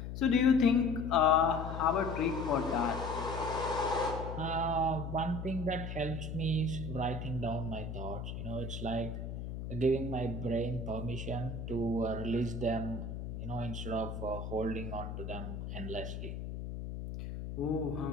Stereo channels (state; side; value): noise; left; hum, 6 dB below the sound